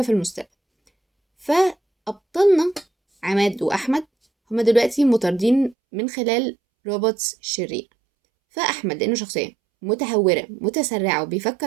في المستقبل، فأبطالنا عماد وأحمد هما دلوقتي مطاردين من خلال روبوتس شرير. فأحمد لأنه شخصية متهورة متسرعة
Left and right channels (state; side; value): drops out; left; at 5.8 s